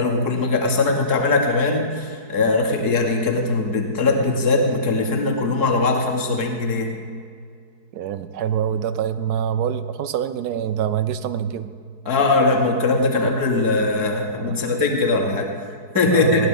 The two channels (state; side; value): late; left; 4.7 ms